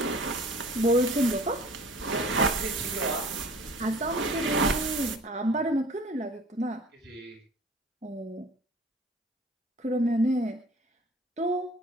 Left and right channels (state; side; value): normal; both; correlation 0.46